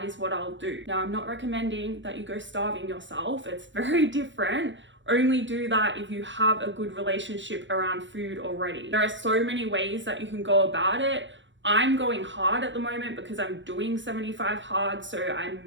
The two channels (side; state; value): left; late; 0.54 ms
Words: is what I'll do. Now, I'm not recommending that you go starving yourself. It's very different. Only do that if you have a good relationship around food already. There are so many ways that you can go about it. I'm going hard at the moment because I'm doing 75 hard, so I